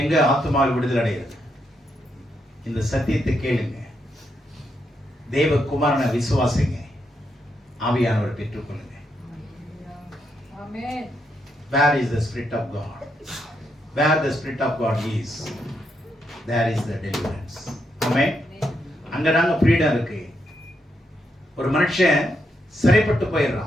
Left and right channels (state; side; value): normal; both; correlation 0.80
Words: எங்க ஆத்துமாவில் விடுதலை அடைகிறது? இந்த சத்தியத்தை கேளுங்க, தேவகுமாரனை விசுவாசிங்க, ஆவியானவர் பெற்றுக்கொள்ளுங்க. Where is the Spirit of God? Where the Spirit of God is, there is the deliverance. Amen. அங்கதாங்க ஃப்ரீடம் இருக்கு. ஒரு மனுஷன் சிறைப்பட்டு